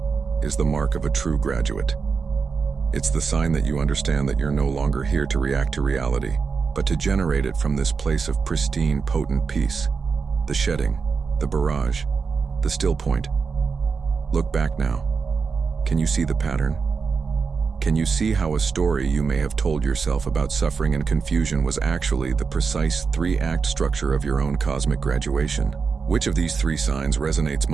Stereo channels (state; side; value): quieter; left; 5.2 dB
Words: is the mark of a true graduate. It's the sign that you understand that you're no longer here to react to reality, but to generate it from this place of pristine, potent peace. The shedding, the barrage, the still point. Look back now. Can you see the pattern? Can you see how a story you may have told yourself about suffering and confusion was actually the precise 3-act structure of your own cosmic graduation? Which of these 3 signs resonates